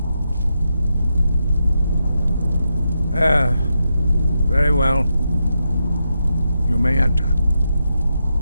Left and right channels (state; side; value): inverted; both; correlation -0.85